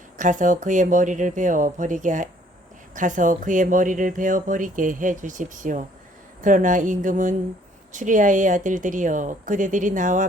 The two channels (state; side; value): normal; both; correlation 0.61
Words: 가서 그의 머리를 베어 버리게 해 주십시오. 그러나 임금은 추리아의 아들들이여 그대들이 나와